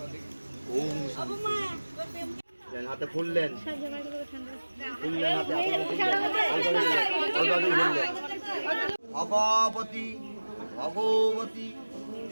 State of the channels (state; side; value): inverted; both; correlation -1.00